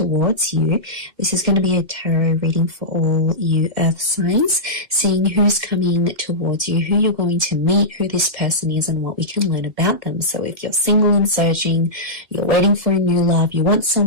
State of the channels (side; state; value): left; late; 2.1 ms